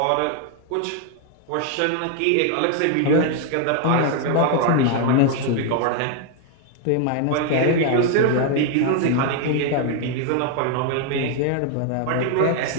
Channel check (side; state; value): both; different; correlation 0.00